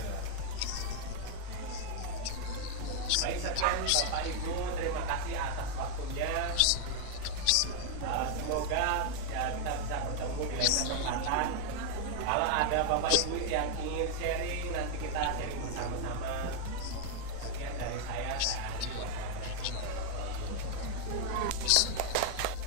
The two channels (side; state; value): both; different; correlation 0.00